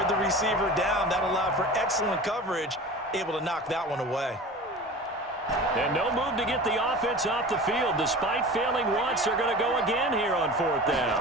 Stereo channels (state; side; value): normal; both; correlation 0.36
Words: the receiver down. That allowed for excellent coverage, able to knock that one away. And no move to get the offense off the field. Despite failing once, they're going to go again here on 4th down.